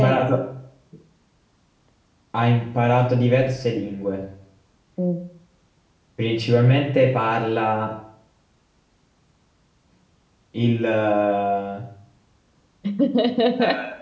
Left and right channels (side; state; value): both; identical; correlation 1.00